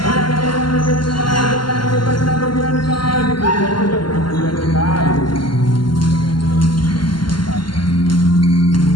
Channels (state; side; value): late; right; 0.72 ms